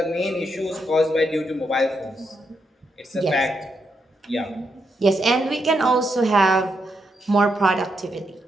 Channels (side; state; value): both; normal; correlation 0.81